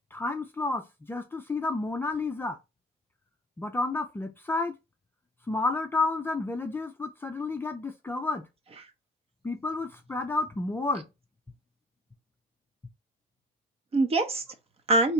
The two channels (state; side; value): normal; both; correlation 0.48